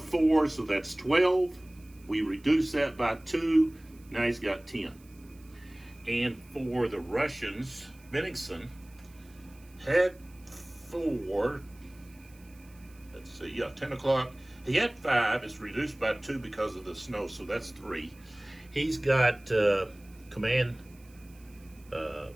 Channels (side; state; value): right; noise; hiss, 28 dB below the sound